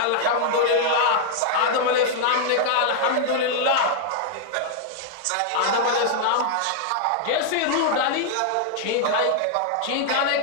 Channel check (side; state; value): both; different; correlation -0.01